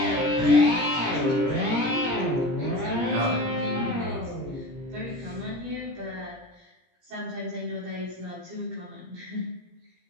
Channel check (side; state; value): left; late; 17 ms